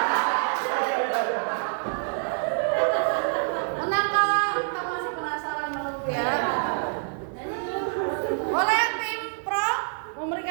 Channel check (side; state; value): left; silent; 61 dB below the other